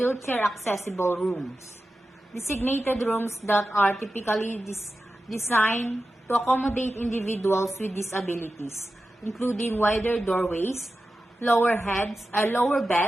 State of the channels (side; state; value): both; normal; correlation 0.92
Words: accessible rooms. Designated rooms that are typically designed to accommodate individuals with disabilities, including wider doorways, lower